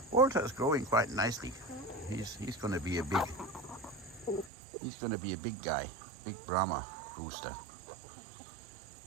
Walter is growing quite nicely. He's going to be a big guy, big Brahma rooster.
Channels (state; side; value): drops out; left; at 4.5 s